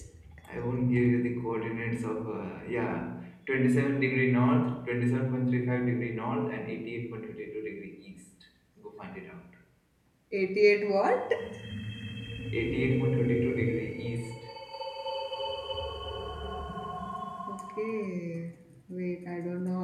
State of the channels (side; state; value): both; identical; correlation 1.00